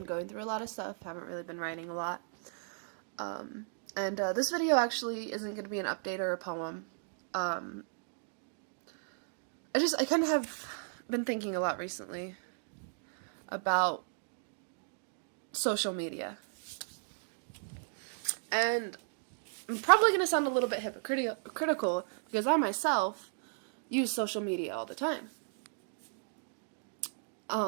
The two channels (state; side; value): silent; left; digital silence